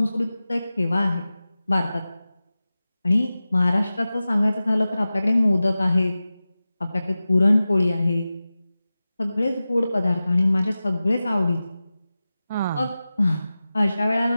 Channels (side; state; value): both; inverted; correlation -0.95